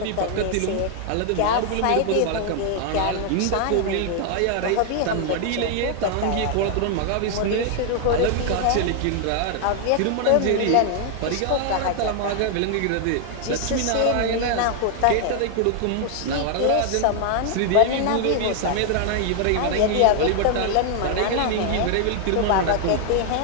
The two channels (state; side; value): different; both; correlation 0.00